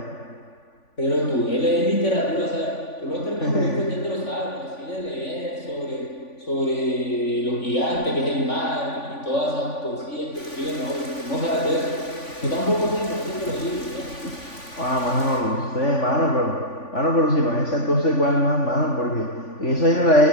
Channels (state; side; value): late; right; 3.5 ms